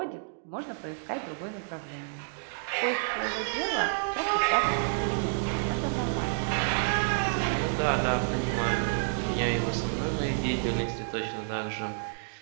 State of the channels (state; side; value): silent; left; digital silence